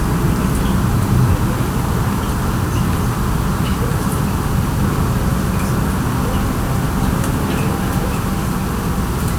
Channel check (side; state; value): both; identical; correlation 1.00